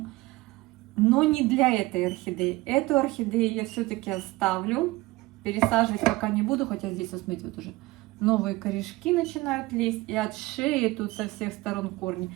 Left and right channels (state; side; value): quieter; left; 20.4 dB